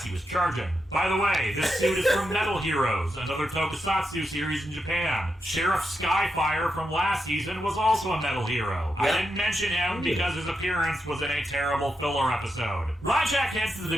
he was charging. By the way, this suit is from Metal Heroes, another tokusatsu series in Japan. Sheriff Skyfire from last season was also a Metal Hero. I didn't mention him because his appearance was in a terrible filler episode. Ryjack heads to the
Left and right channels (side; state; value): both; normal; correlation 0.85